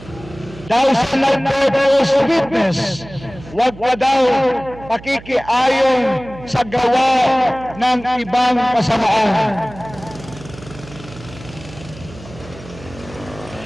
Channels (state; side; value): noise; right; hum, 17 dB below the sound